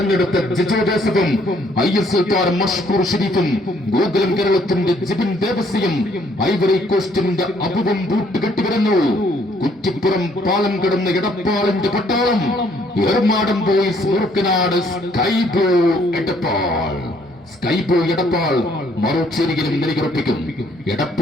ജിജോ ജോസഫും ISL താരം മഷ്കൂർ ഷരീഫും ഗോകുലം കേരളത്തിന്റെ ജിബിൻ ദേവസിയും ഐവറി കോസ്റ്റിന്റെ അബുവും കൂട്ടുകെട്ടിവരുന്നു. കുറ്റിപ്പുറം പാലം കടന്ന എടപ്പാളിന്റെ പട്ടാളം. എർമാടം ബോയ്സ് മുറുക്കനാട് സ്കൈബോ എടപ്പാൾ മറുചേരിയിലും നിലയുറപ്പിക്കും.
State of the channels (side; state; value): both; normal; correlation 0.65